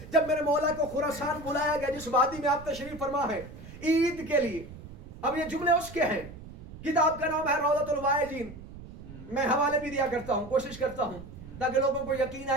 جب میرے مولا کو خراسان بلایا گیا جس وادی میں آپ تشریف فرما ہے عید کے لیے, اب یہ جملے اس کے ہیں, کتاب کا نام ہے روضۃ الواعظین. میں حوالے بھی دیا کرتا ہوں, کوشش کرتا ہوں تاکہ لوگوں کو یقین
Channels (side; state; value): right; noise; rumble, 15 dB below the sound